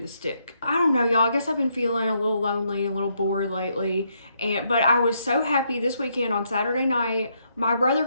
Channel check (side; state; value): both; inverted; correlation -0.76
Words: stick. I don't know, y'all. I guess I've been feeling a little lonely, a little bored lately. But I was so happy this weekend on Saturday night. My brother